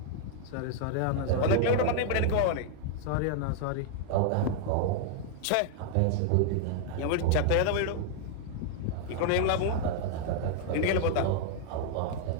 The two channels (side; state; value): both; different; correlation -0.01